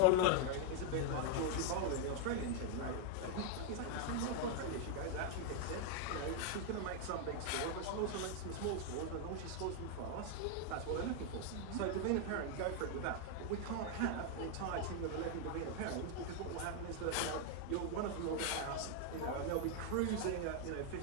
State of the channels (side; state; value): both; different; correlation 0.00